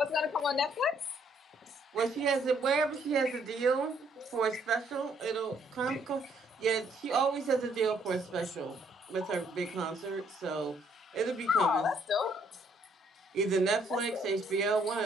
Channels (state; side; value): normal; both; correlation 0.68